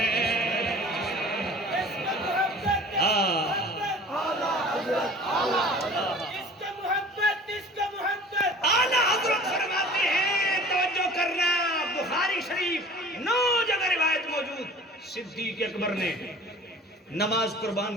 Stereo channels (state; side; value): normal; both; correlation 0.45